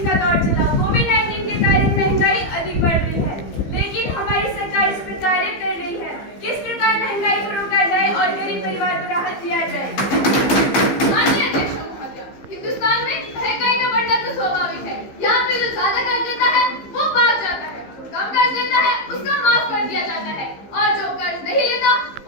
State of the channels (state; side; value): late; right; 15 ms